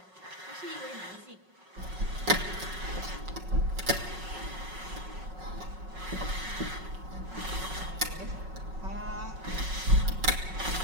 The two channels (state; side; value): late; left; 5.4 ms